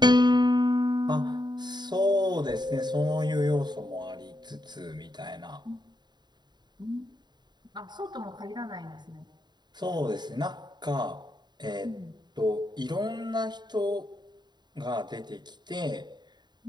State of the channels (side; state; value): left; late; 0.21 ms